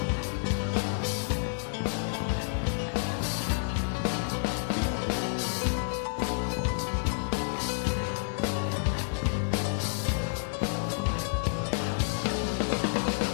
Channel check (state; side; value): silent; right; 58 dB below the other